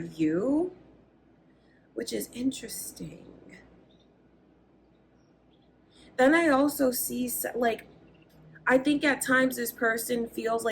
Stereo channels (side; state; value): both; identical; correlation 1.00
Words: which is interesting. Then I also see, like, I think at times this person feels